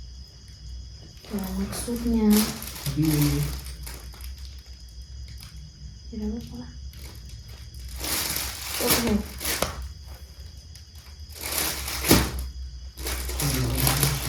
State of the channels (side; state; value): both; identical; correlation 1.00